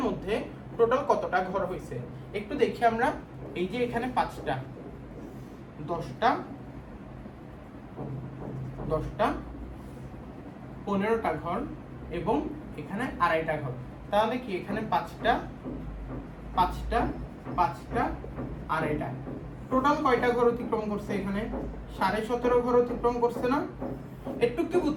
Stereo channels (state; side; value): identical; both; correlation 1.00